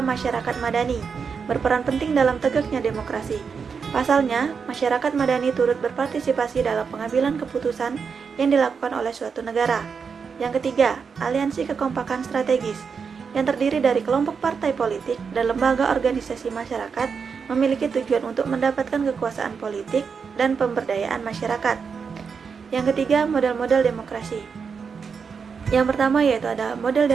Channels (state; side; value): quieter; left; 5.9 dB